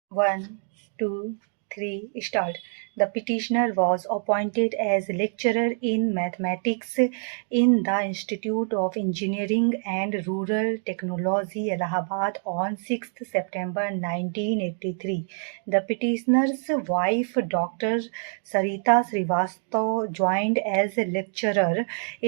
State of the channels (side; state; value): left; silent; 61 dB below the other